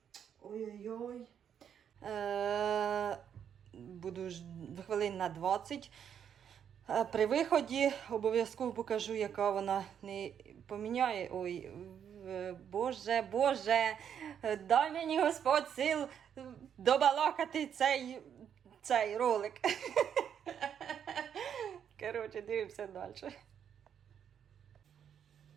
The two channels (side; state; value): left; quieter; 8.5 dB